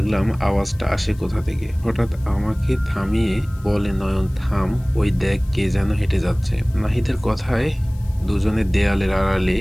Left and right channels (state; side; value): noise; left; hiss, 27 dB below the sound